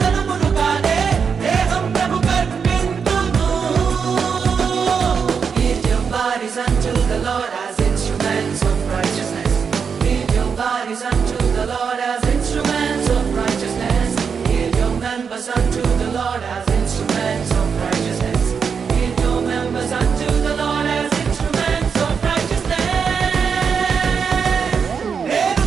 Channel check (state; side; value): quieter; left; 6.2 dB